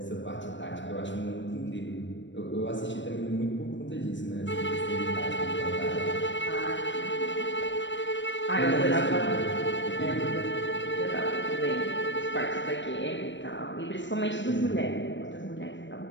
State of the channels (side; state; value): right; late; 0.54 ms